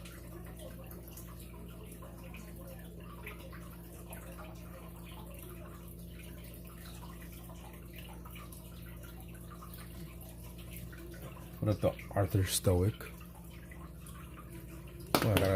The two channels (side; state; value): both; identical; correlation 1.00